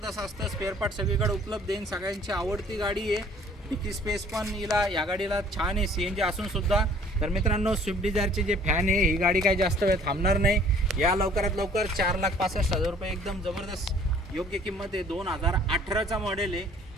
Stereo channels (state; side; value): normal; both; correlation 0.55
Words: असतं. स्पेअर पार्ट सगळीकडे उपलब्ध आहे. सगळ्यांची आवडती गाडी आहे. डिकी स्पेस पण या गाडीला छान आहे CNG असून सुद्धा. तर मित्रांनो, स्विफ्ट डिझायरचे जे फॅन आहे, ही गाडी काही जास्त वेळ थांबणार नाही. या लवकरात लवकर 4,65,000 रुपये एकदम जबरदस्त योग्य किंमत आहे. 2018चा मॉडेल आहे,